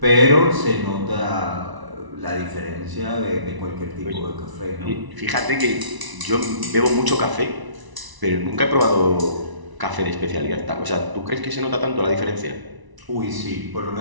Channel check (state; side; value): late; left; 1.0 ms